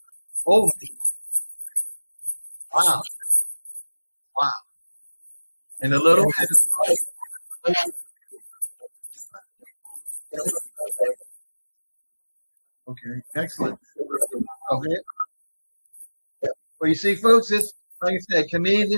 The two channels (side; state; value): both; inverted; correlation -1.00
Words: Oh, wow. Wow. And a little. Okay, excellent. Okay. Well, you see, folks, this, like I said, to me,